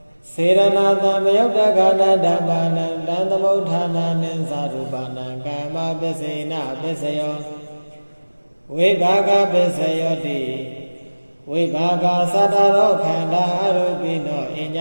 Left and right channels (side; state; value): both; inverted; correlation -1.00